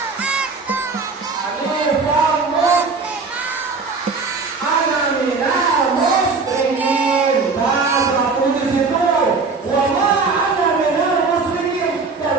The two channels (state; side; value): quieter; left; 4.4 dB